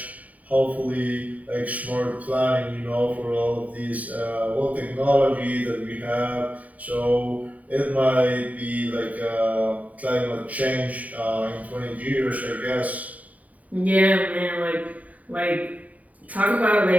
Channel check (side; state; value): left; late; 0.071 ms